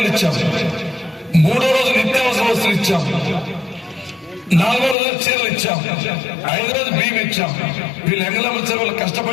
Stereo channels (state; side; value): drops out; right; at 5.0 s